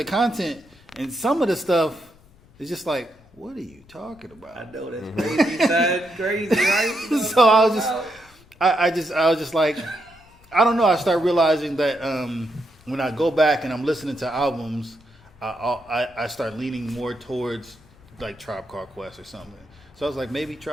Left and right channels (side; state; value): left; noise; rumble, 27 dB below the sound